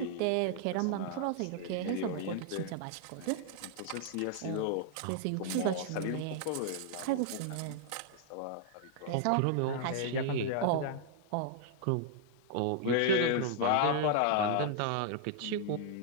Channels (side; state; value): both; different; correlation -0.01